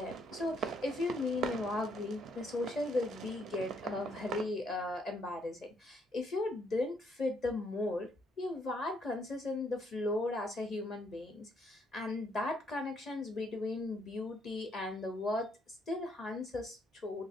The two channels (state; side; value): normal; both; correlation 0.71